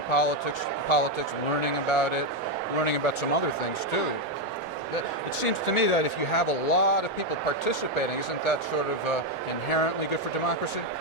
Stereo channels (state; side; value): normal; both; correlation 0.04